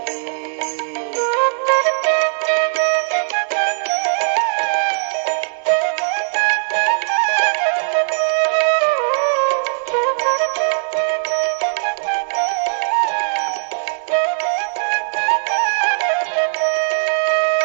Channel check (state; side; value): silent; left; 67 dB below the other